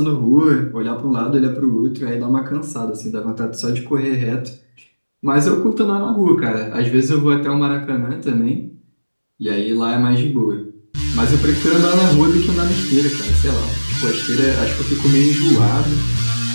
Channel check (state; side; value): inverted; both; correlation -1.00